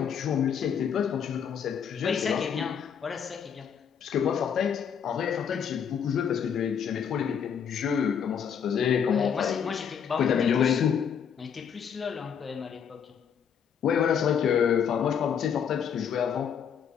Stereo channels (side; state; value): right; quieter; 7.7 dB